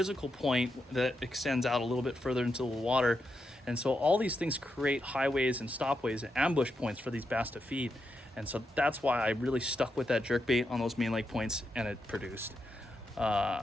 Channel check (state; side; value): normal; both; correlation 0.85